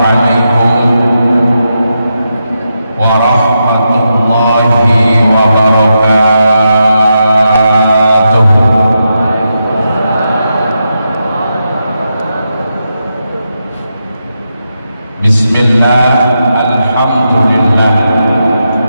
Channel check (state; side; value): inverted; both; correlation -0.86